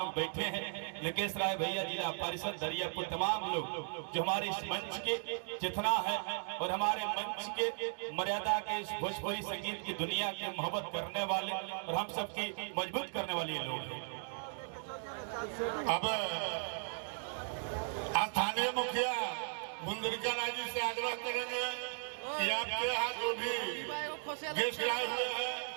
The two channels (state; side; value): silent; left; digital silence